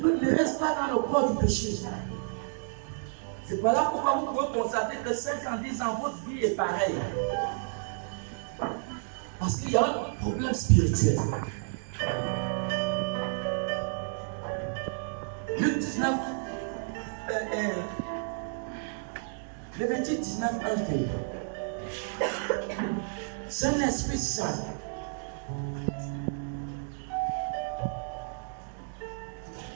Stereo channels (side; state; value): left; silent; digital silence